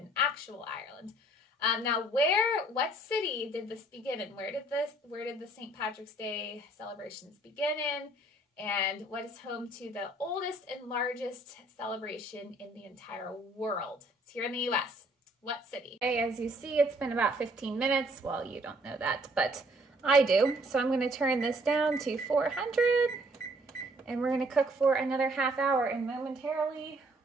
actual Ireland. Now, what city did this begin in? Where did the St. Patrick's Day celebrations begin in? And what is home to the oldest and largest celebration in the entire world? It's here in the U.S. What city? Okay, as you see, it's been about 15 minutes. Well, you don't know that, but I do. So I'm going to turn this down to 400, and we're going to cook for another half hour. And momentarily,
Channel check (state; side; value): normal; both; correlation 0.61